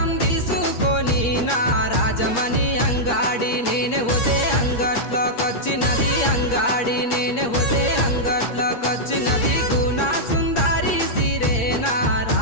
తీసుకొని నా రాజమణి అంగాడి నేనే పోతే అంగట్లోకొచ్చినది అంగాడి నేనే పోతే అంగట్లోకొచ్చినది గుణా సుందరి సిరే నా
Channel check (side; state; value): right; late; 8.5 ms